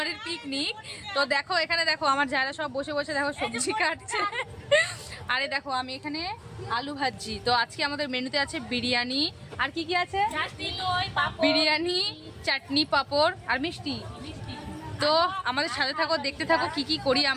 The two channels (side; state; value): both; identical; correlation 1.00